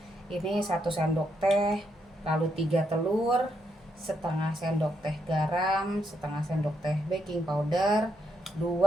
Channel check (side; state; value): both; normal; correlation 0.78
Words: Ini 1 sendok teh, lalu 3 telur, setengah sendok teh garam, setengah sendok teh baking powder,